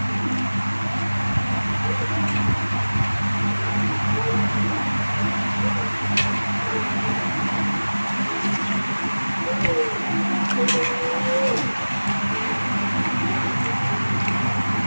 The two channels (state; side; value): inverted; both; correlation -1.00